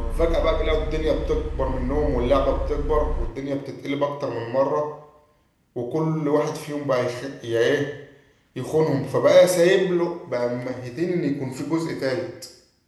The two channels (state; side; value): identical; both; correlation 1.00